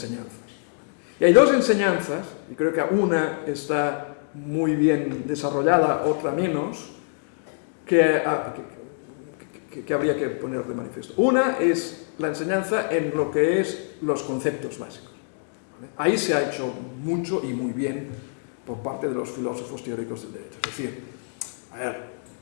Y hay dos enseñanzas, y creo que una está muy bien desarrollada, otra menos, que habría que poner de manifiesto. Una es la enseñanza en lo que es los conceptos básicos. Ahí se ha hecho mucho y muy bien por parte de los filósofos teóricos del derecho. Es decir, a ver,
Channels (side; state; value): right; silent; digital silence